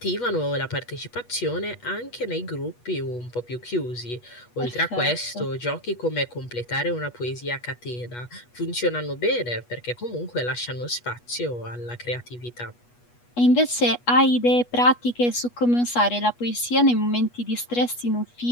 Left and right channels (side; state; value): right; late; 8.3 ms